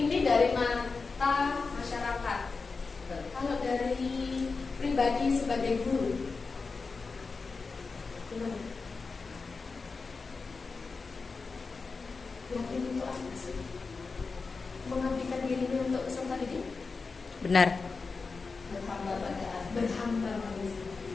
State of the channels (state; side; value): quieter; right; 4.4 dB